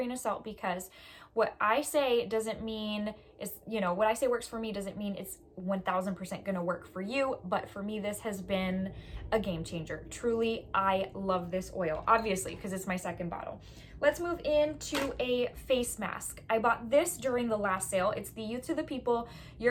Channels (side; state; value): both; identical; correlation 1.00